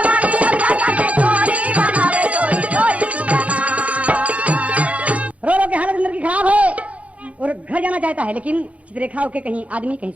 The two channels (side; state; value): left; late; 0.066 ms